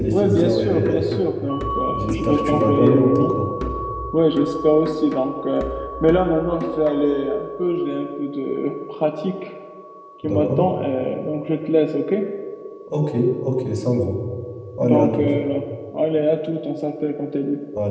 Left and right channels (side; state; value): both; identical; correlation 1.00